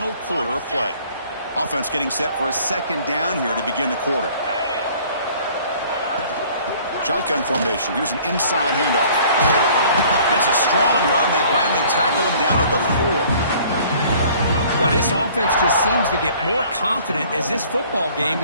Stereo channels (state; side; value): inverted; both; correlation -0.54